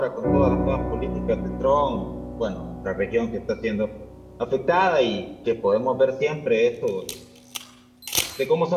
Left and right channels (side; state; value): both; identical; correlation 1.00